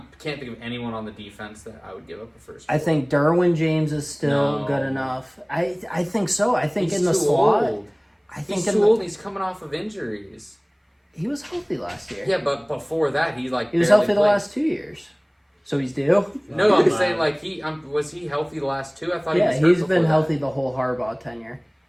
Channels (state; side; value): identical; both; correlation 1.00